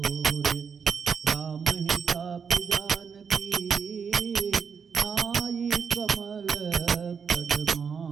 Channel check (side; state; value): left; quieter; 6.3 dB